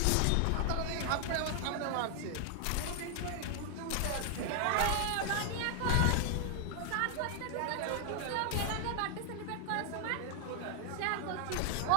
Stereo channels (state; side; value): different; both; correlation 0.00